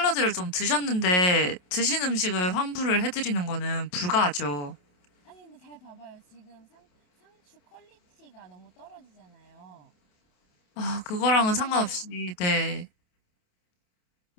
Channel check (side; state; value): right; late; 28 ms